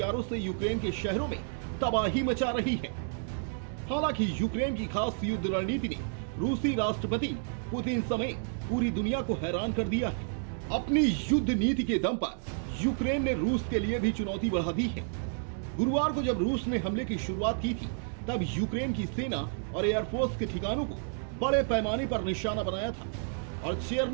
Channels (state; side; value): silent; left; digital silence